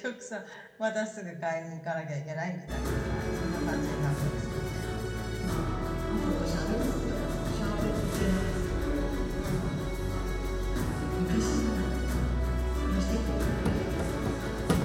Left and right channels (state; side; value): identical; both; correlation 1.00